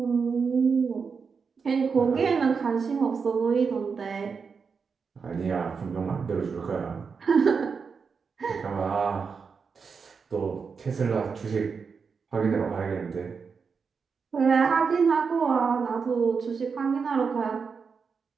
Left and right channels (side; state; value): left; quieter; 5.5 dB